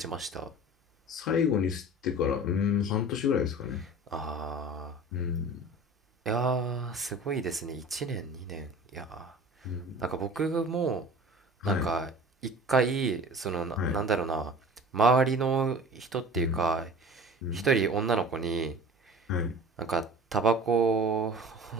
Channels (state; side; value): normal; both; correlation 0.41